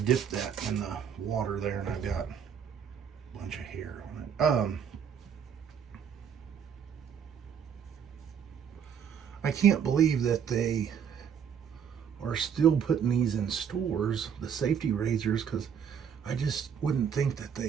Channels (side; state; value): left; quieter; 7.7 dB